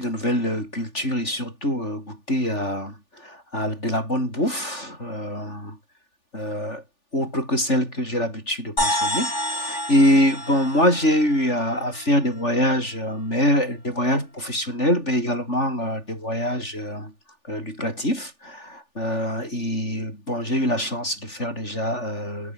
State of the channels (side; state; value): right; late; 3.4 ms